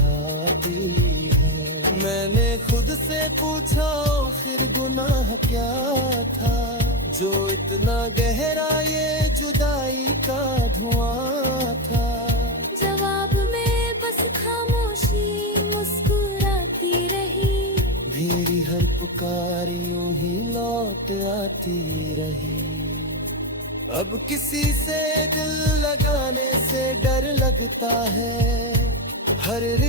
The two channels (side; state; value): both; normal; correlation 0.09